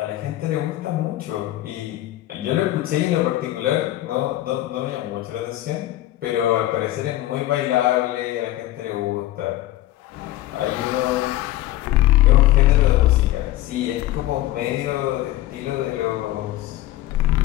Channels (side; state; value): right; quieter; 15.3 dB